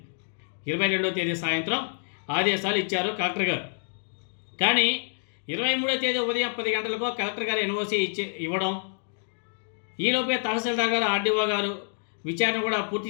22వ తేదీ సాయంత్రం ఆదేశాలు ఇచ్చారు కలెక్టర్ గారు. కానీ 23వ తేదీ ఉదయం 10 గంటలకు కలెక్టర్ గారు ఎన్ఓసి ఇవ్వడం, ఈలోపే తహసీల్దార్ గారు, ఆర్డీఓ గారు విచారణ కూడా పూర్తి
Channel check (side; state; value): right; silent; digital silence